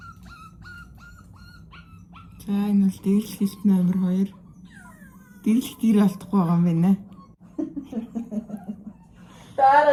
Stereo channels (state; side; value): identical; both; correlation 1.00